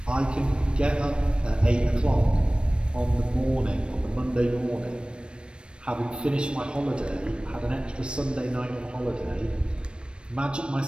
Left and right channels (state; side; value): late; left; 0.056 ms